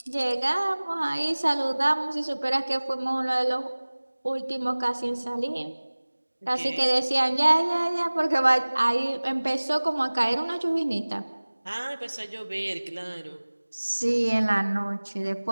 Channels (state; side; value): inverted; both; correlation -1.00